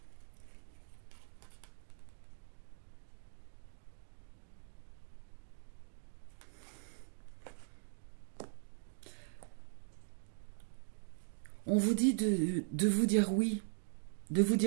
On vous dit de vous dire oui, de vous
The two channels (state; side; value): silent; left; digital silence